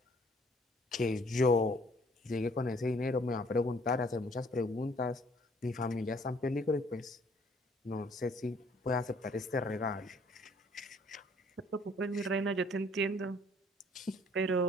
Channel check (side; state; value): both; normal; correlation 0.60